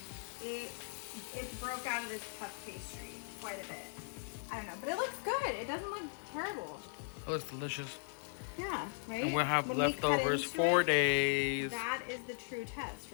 It broke out of this puff pastry quite a bit. I don't know, but it looks good. It doesn't look terrible. It looks delicious. Yeah, right? And we'll have When leftovers 4 days. That is the true test,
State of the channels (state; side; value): silent; right; digital silence